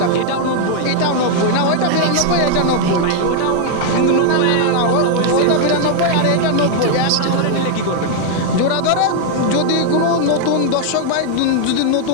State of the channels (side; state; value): both; different; correlation 0.00